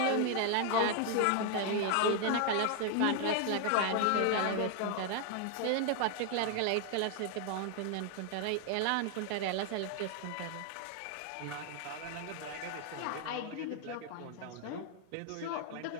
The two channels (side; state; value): both; different; correlation 0.00